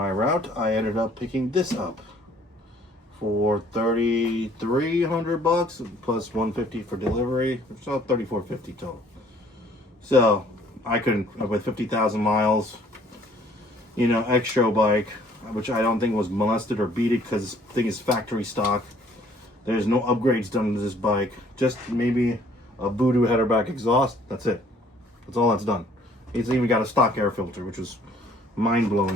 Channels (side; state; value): both; normal; correlation 0.59